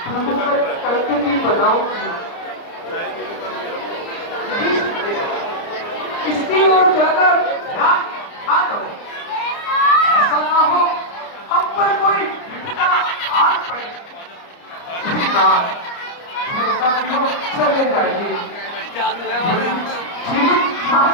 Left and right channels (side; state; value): right; late; 29 ms